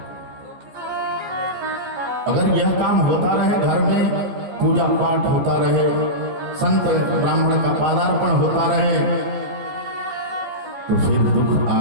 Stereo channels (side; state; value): left; late; 14 ms